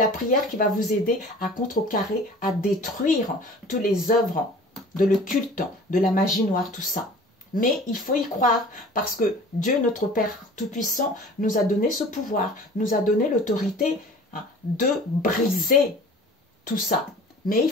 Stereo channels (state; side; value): normal; both; correlation 0.45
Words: prière qui va vous aider à contrecarrer, à détruire toutes les œuvres de le culte, de la magie noire, tout ça. Mais il faut y croire parce que Dieu, notre Père Tout-Puissant, nous a donné ce pouvoir, nous a donné l'autorité de briser tout ça. Mais il